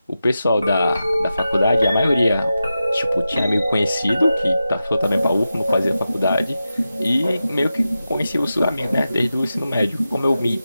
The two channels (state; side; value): inverted; both; correlation -0.91